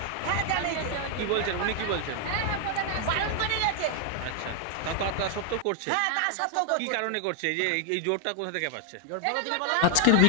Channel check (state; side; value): different; both; correlation 0.00